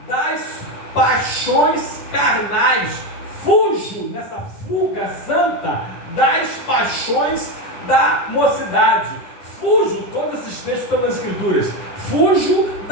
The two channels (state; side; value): late; right; 10 ms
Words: das paixões carnais. Fujo, nessa fuga santa, das paixões da mocidade. Fujo, todos esses textos estão nas Escrituras. Fujo